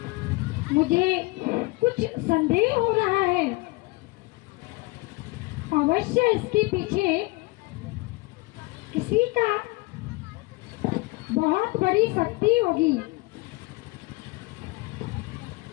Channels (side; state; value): right; quieter; 23.4 dB